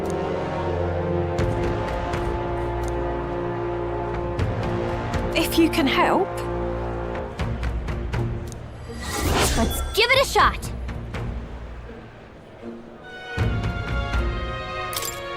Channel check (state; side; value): identical; both; correlation 1.00